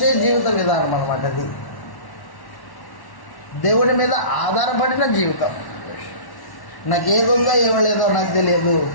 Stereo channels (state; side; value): late; right; 1.1 ms